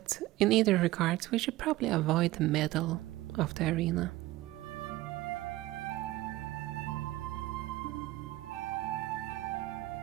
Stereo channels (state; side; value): quieter; left; 17.2 dB